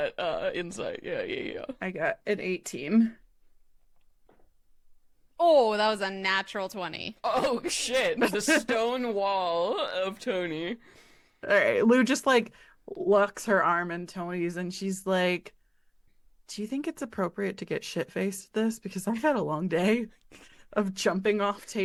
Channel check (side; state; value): both; identical; correlation 1.00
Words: insight. Yeah. I got an 18. Oh, that was a natural 20. Oh shit! The stone wall of Tony. All right, Lou just like locks her arm in Tony's, and she's like, "Do you think it's appropriate to get shit-faced this? Because I've had a long day of jumping off